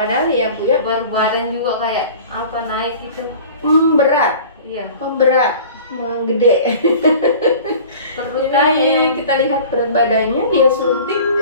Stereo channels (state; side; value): inverted; both; correlation -0.43